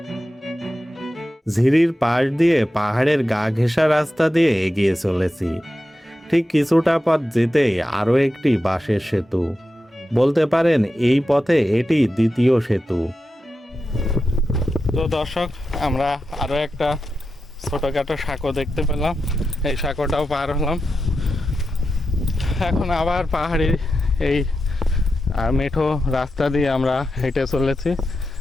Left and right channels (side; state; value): both; normal; correlation 0.90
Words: ঝিরির পাশ দিয়ে পাহাড়ের গা ঘেঁষা রাস্তা দিয়ে এগিয়ে চলেছি। ঠিক কিছুটা পথ যেতেই আরও একটি বাঁশের সেতু, বলতে পারেন এই পথে এটি দ্বিতীয় সেতু। তো দর্শক, আমরা আরও একটা ছোটোখাটো সাঁকো দেখতে পেলাম, এই সাঁকোটাও পার হলাম। এখন আবার পাহাড়ি এই মেঠো রাস্তা দিয়ে আমরা হেঁটে চলেছি।